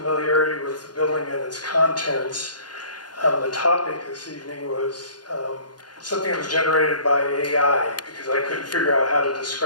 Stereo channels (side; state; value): right; late; 0.70 ms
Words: with the building and its contents. The topic this evening was something that was generated by AI because I couldn't figure out how to